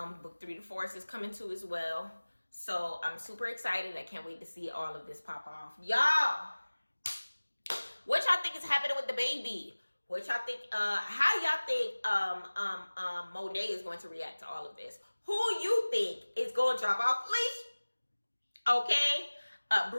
Book 3 to Force is coming too as well. So I'm super excited. I can't wait to see all of this pop off. Y'all, what y'all think is happening with the baby? What y'all think, how y'all think Monet is going to react to all of this? Who you think is going to drop off leash? Okay.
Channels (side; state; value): both; inverted; correlation -1.00